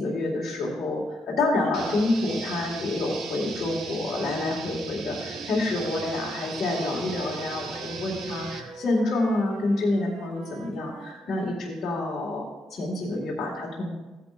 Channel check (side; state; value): both; normal; correlation 0.78